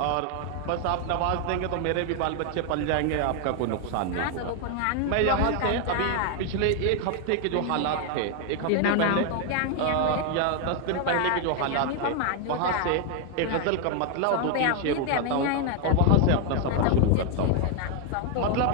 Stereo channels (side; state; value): both; different; correlation 0.00